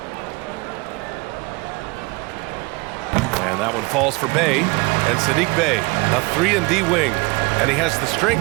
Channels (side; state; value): left; quieter; 25.9 dB